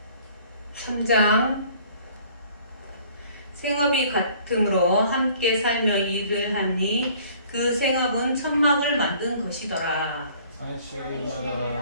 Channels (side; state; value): both; inverted; correlation -0.55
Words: 3장 생업이 같음으로 함께 살며 일을 하니 그 생업은 천막을 만든 것이더라.